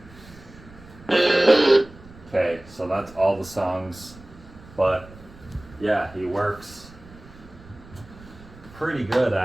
Okay, so that's all the songs, but yeah, he works pretty good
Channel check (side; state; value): right; noise; rumble, 21 dB below the sound